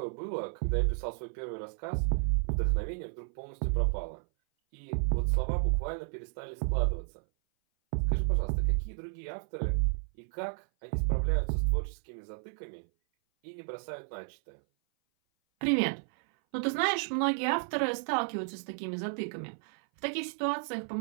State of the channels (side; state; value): left; silent; 56 dB below the other